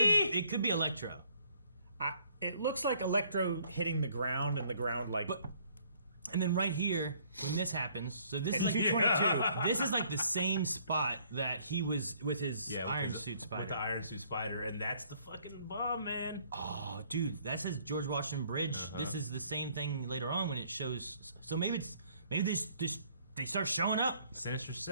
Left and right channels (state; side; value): inverted; both; correlation -0.63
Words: It could be Electro. it looks like Electro hitting the ground and the ground like. But and then right here, when this happens, so this It's is like 222. this is like the same spot that he was with his Yeah, with Iron his- Suit Spider. With the Iron Suit Spider, and that's the fucking bomb, man. Oh, dude, that says George Washington Bridge. Uh-huh. This is the same thing later on when it shows. So maybe they start showing up. Sinister